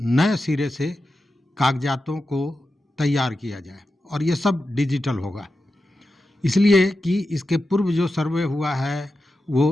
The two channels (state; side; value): normal; both; correlation 0.91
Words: सिरे से कागजातों को तैयार किया जाए और ये सब डिजिटल होगा। इसलिए कि इसके पूर्व जो सर्वे हुआ है